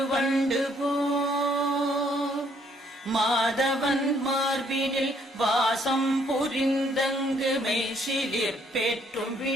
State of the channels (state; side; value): normal; both; correlation 0.67